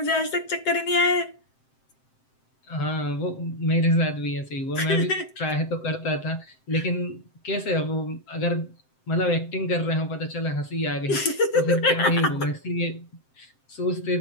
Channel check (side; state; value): right; late; 7.7 ms